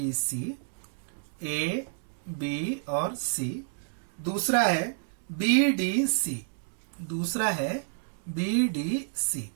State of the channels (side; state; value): left; silent; digital silence